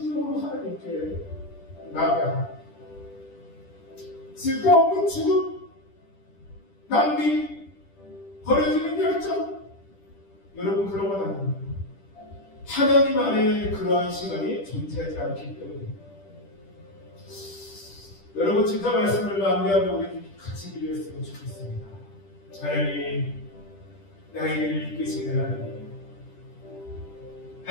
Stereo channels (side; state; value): right; late; 10 ms